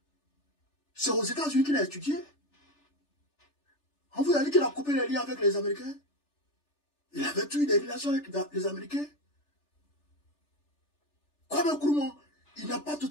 C'est aux États-Unis qu'il a étudié. On vous a dit qu'il a coupé les liens avec les Américains. Il avait eu des relations avec les Américains. Kwame Nkrumah, il n'a pas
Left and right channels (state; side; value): late; right; 3.4 ms